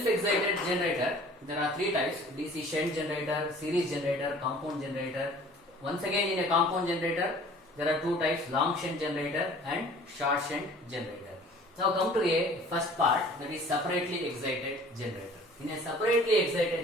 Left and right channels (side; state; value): both; normal; correlation 0.49